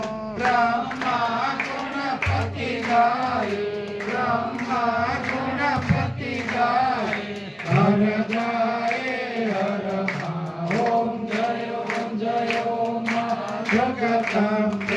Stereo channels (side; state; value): both; identical; correlation 1.00